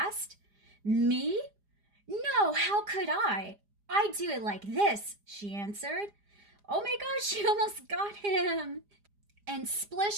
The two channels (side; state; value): left; late; 4.9 ms